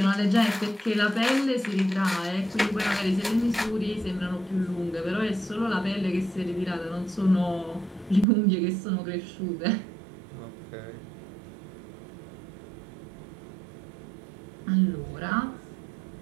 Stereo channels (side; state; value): left; drops out; at 8.2 s